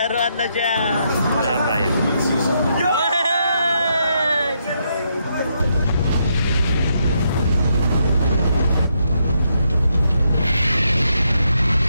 na siya. Rabay.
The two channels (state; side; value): inverted; both; correlation -0.78